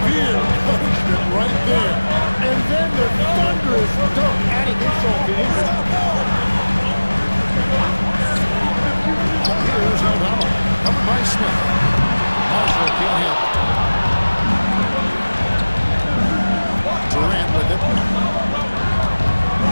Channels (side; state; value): both; inverted; correlation -1.00